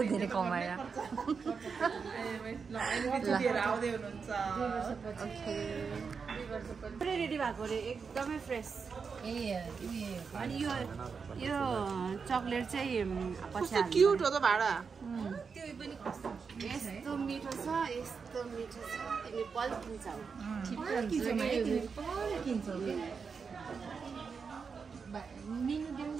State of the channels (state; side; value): quieter; left; 5.5 dB